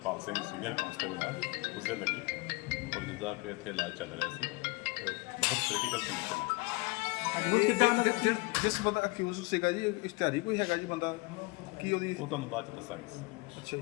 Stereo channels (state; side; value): quieter; right; 25.2 dB